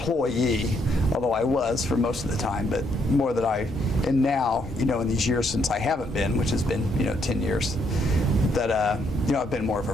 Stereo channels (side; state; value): both; normal; correlation 0.73